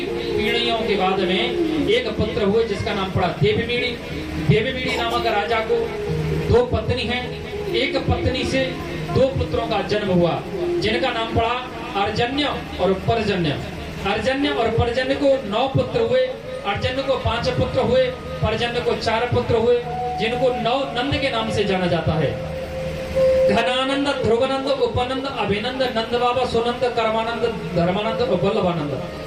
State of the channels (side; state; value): both; identical; correlation 1.00